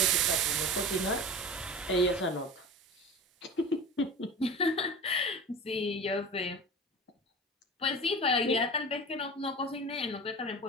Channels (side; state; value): both; normal; correlation 0.33